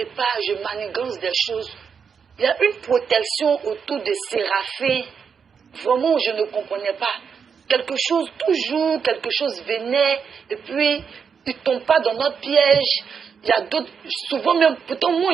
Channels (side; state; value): left; quieter; 6.4 dB